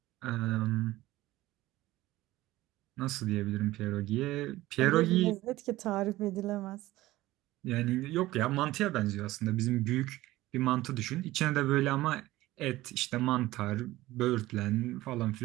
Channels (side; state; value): left; quieter; 17.2 dB